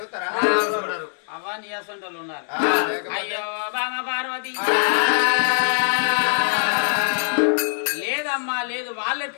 చూస్తారా అవా నియాసంటోళ్ళు ఉన్నారు అయ్యో బామ పార్వతి లేదమ్మా లేదు వాళ్ళు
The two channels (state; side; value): silent; right; digital silence